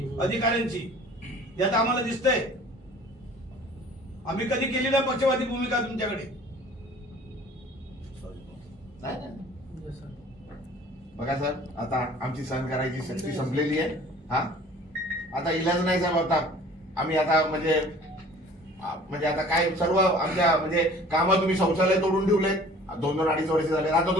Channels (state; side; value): normal; both; correlation 0.49